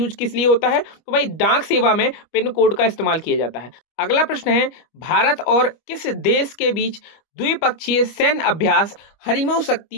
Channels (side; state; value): right; late; 25 ms